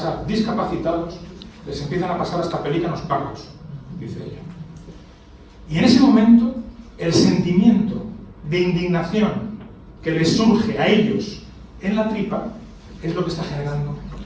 discapacitados, les empiezan a pasar hasta pelícanos pardos, dice ella. Y en ese momento, el sentimiento de indignación que les surge a ellos en la tripa es lo que está generando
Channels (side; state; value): both; identical; correlation 1.00